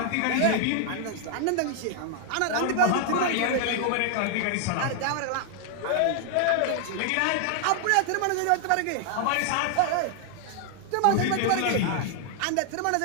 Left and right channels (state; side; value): different; both; correlation 0.00